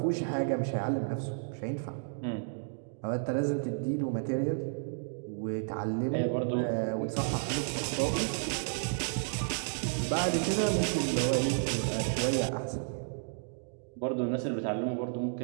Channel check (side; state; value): left; silent; digital silence